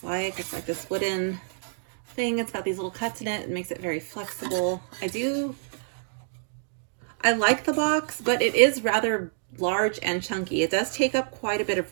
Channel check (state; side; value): silent; left; digital silence